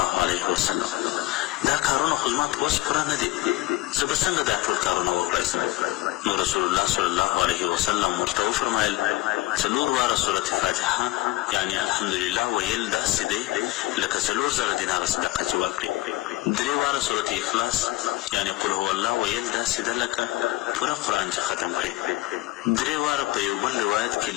علیه وسلم، دا کارونه خو زما په وس پوره نه دي، زه به څنګه دا ټول کارونه وکړی سم؟ نو رسول الله صلی الله علیه وسلم ورته وفرمایل: 4 واره سورة فاتحه یعنې الحمدلله ویل داسې دی لکه 4,000 دیناره صدقه چې ورکړي. 3 واره سورة اخلاص یعنې قل هو الله ویل داسې ده لکه پوره قرآن چې ختم کړي. 3 واره په یو بل روایت کې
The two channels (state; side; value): quieter; right; 19.1 dB